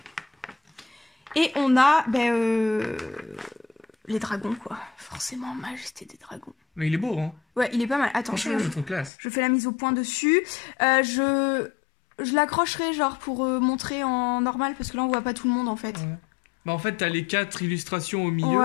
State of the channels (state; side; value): drops out; right; at 9.1 s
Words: Et on a... les dragons, quoi. Forcément, Majesté des Dragons. Mais il est beau, hein. Ouais, il est pas mal. Attends, franchement, je trouve classe. Je fais la mise au point dessus. Je l'accrocherai, genre, pour montrer en normal, parce que là, on voit pas tout le monde, en fait. Ouais. Bah, en fait, t'as les 4 illustrations au milieu.